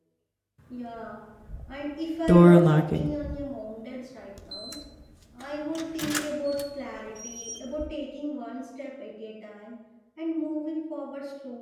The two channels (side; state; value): both; identical; correlation 1.00